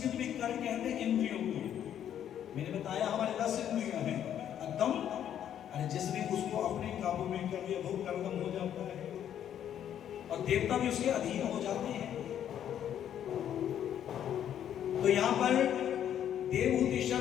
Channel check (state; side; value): quieter; right; 10.0 dB